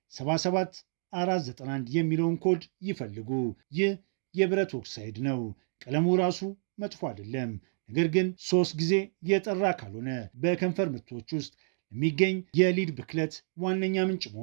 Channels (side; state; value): left; silent; digital silence